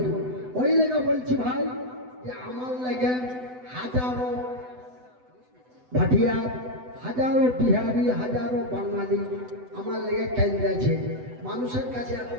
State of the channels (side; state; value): left; late; 7.9 ms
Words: ওই লেগে বলছি ভাই যে আমার লেগে হাজারো ভাটিয়া, হাজারো বিহারি, হাজারো বাঙালি আমার লেগে কেন্দ্রেছে, মানুষের কাছে